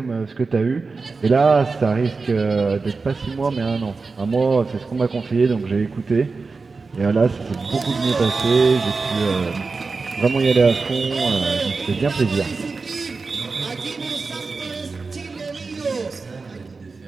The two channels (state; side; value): quieter; left; 4.2 dB